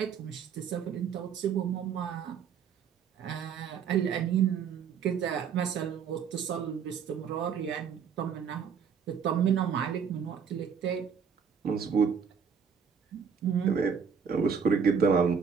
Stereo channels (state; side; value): quieter; left; 6.8 dB